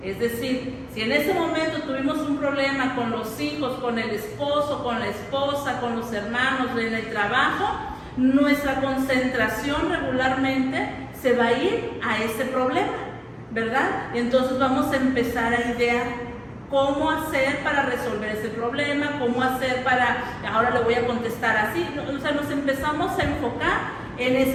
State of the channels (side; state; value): both; identical; correlation 1.00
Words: Es decir, si en ese momento tuvimos un problema con los hijos, con el esposo, con la esposa, con los hermanos, en el trabajo, nuestra concentración regularmente se va a ir a ese problema, ¿verdad? Y entonces vamos a empezar a idear cómo hacer para resolver ese problema, cómo hacer ahora le voy a contestar así. O sea, nos empezamos a enfocar en